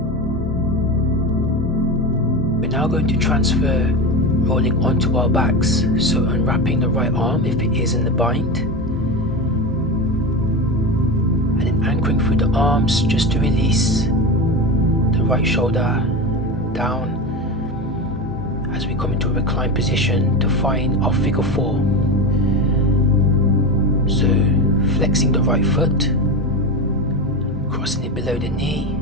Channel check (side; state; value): both; normal; correlation 0.21